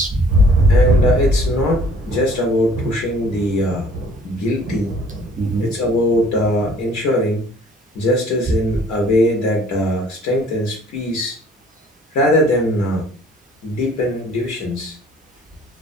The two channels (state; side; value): normal; both; correlation 0.54